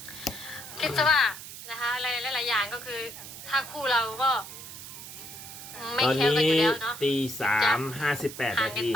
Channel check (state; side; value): noise; right; hiss, 12 dB below the sound